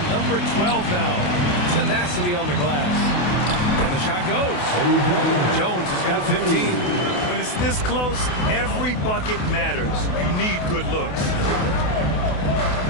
number 12 now. Tenacity on the glass. And the shot goes. Jones has got 15. When it's this close, every bucket matters. You need good looks.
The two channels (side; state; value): right; late; 28 ms